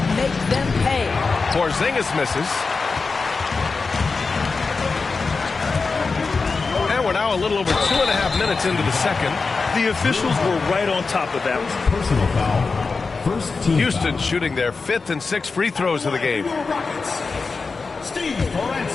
make them pay. Porzingis misses. And we're now a little over 2.5 minutes into the second. The officials were right on top of that. Personal foul. First team Houston foul. shooting their 5th and 6th free throws of the game. Rockets. Steve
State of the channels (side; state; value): right; quieter; 4.4 dB